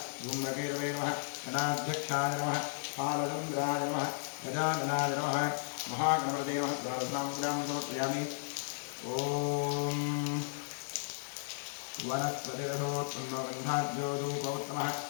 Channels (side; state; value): right; silent; 55 dB below the other